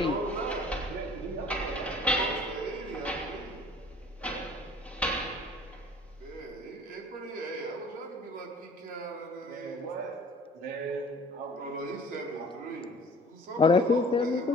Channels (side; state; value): both; normal; correlation 0.50